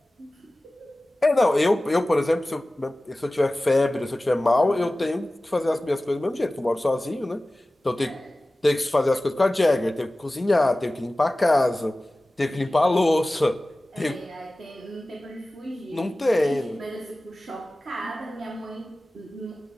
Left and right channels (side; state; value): both; normal; correlation 0.97